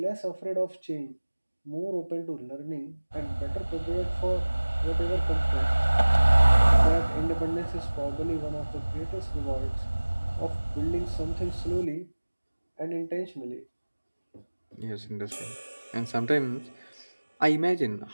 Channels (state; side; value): inverted; both; correlation -1.00